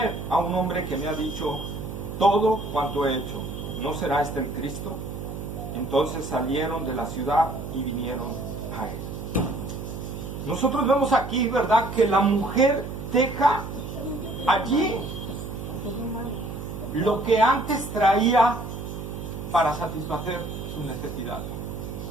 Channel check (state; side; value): noise; right; hum, 8 dB below the sound